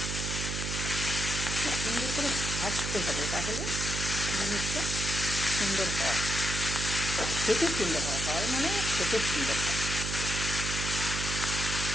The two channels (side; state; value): right; noise; hum, 3 dB below the sound